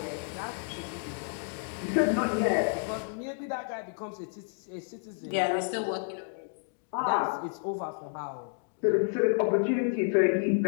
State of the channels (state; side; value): silent; right; 58 dB below the other